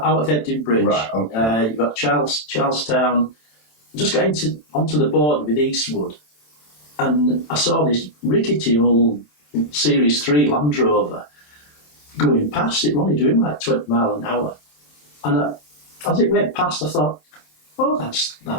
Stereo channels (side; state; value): right; late; 27 ms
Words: of Ebden Bridge. Right, okay. You've got Charlestown. Just got onto the border with Eastwood. And I saw this rickety old Series 3 Land Rover going past. It was only doing like 20 miles an hour. And as it went past, I thought, oh, that's